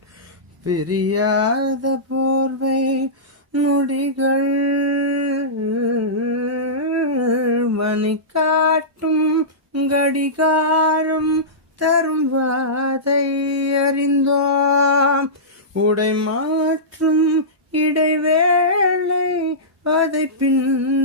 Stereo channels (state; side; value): normal; both; correlation -0.18